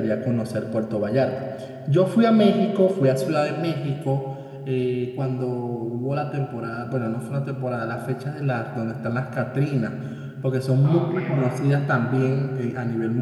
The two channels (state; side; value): identical; both; correlation 1.00